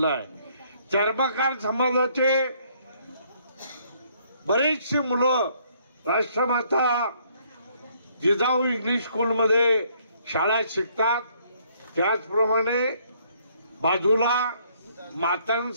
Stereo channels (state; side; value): inverted; both; correlation -0.66